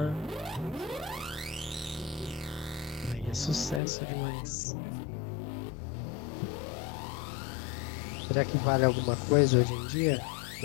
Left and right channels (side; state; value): right; drops out; at 3.8 s